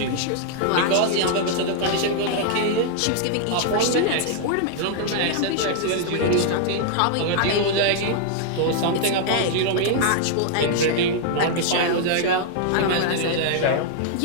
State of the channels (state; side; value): different; both; correlation -0.01